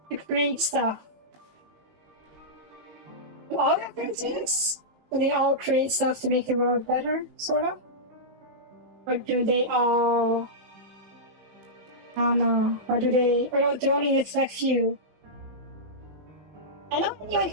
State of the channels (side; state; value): left; late; 19 ms